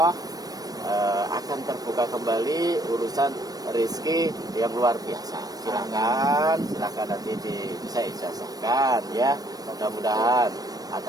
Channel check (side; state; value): left; late; 0.18 ms